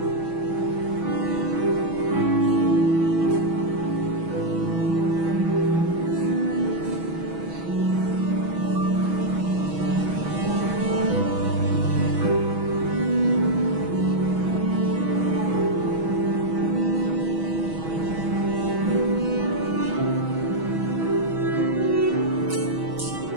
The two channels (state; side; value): late; left; 6.2 ms